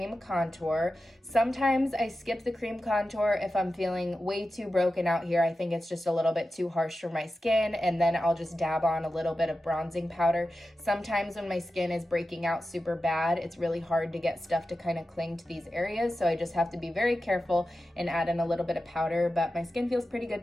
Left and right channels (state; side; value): normal; both; correlation 0.92